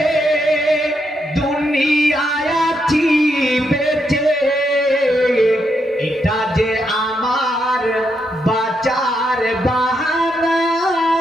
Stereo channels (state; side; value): normal; both; correlation 0.80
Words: দুনিয়ায় আছি বেঁচে এটা যে আমার বাঁচার বাহানা